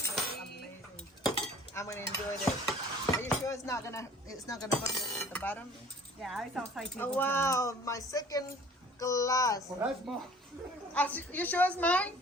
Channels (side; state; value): both; normal; correlation 0.50